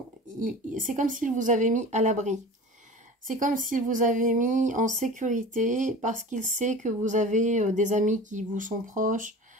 c'est comme s'il vous avait mis à l'abri. C'est comme s'il vous avait mis en sécurité parce qu'il sait que vous avez des amis qui vous sont proches,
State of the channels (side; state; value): both; normal; correlation 0.36